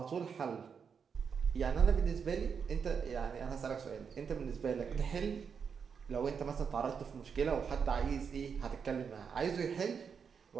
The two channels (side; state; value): left; quieter; 6.5 dB